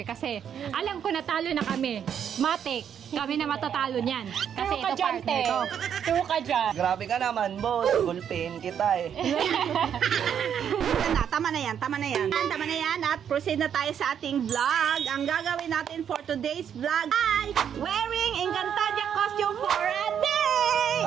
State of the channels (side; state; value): left; quieter; 8.5 dB